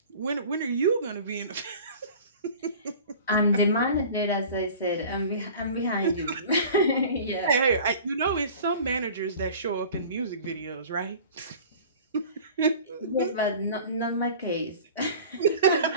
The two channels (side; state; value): both; inverted; correlation -0.42